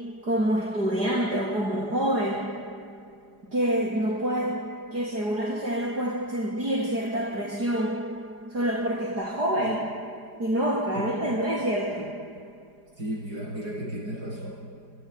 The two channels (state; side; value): late; left; 4.9 ms